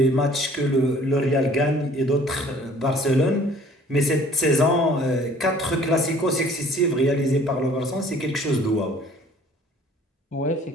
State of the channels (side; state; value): both; normal; correlation 0.53